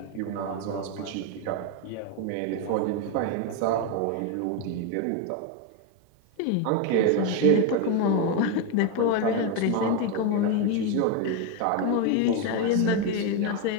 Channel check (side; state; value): both; different; correlation 0.02